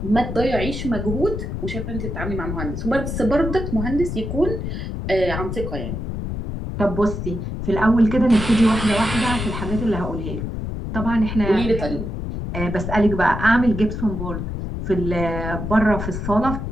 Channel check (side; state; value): left; noise; rumble, 4 dB below the sound